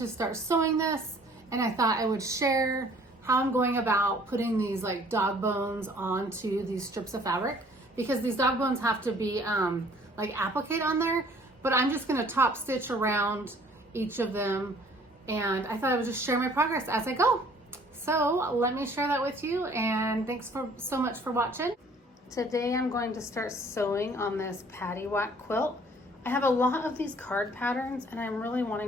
start sewing this, and I thought I would share how I'm going about putting these like dog bones onto these strips of fabric, because these dog bones have to be like applique on there, but I'm just gonna top stitch around each of them, and I thought I would just share my progress as I go. So let me share that with you, and thanks so much for watching. Today I'm going to start sewing on this Paddywhack quilt. I have a lot of these card patterns and I'm really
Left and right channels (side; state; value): both; normal; correlation 0.56